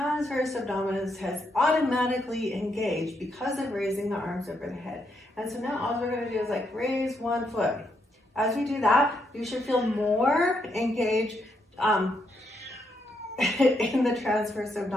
abdominis has automatically engaged because of raising the arms over the head. And so now all we're going to do is like raise 1 foot. As we do that, you should feel more engaged in the transverse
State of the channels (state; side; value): normal; both; correlation 0.78